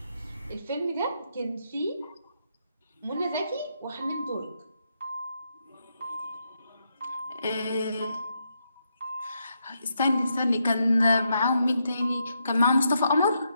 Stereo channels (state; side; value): inverted; both; correlation -0.80